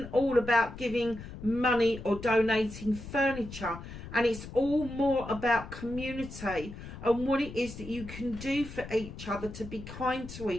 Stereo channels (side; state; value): left; noise; rumble, 12 dB below the sound